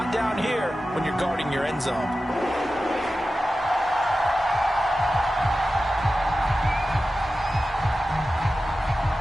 down here when you're guarding your end zone.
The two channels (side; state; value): both; normal; correlation 0.94